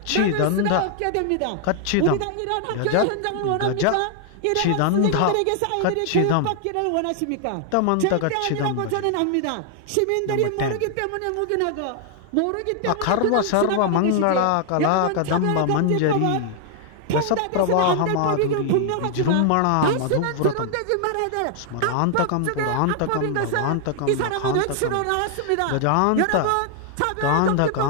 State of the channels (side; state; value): both; different; correlation 0.00